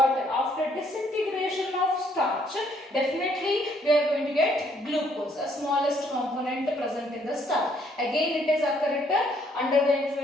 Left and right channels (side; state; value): both; normal; correlation 0.67